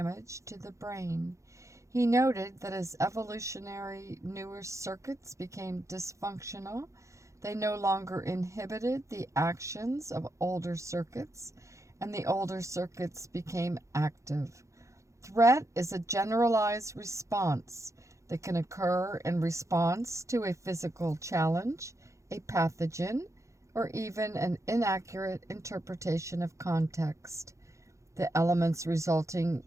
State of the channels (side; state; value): left; late; 0.15 ms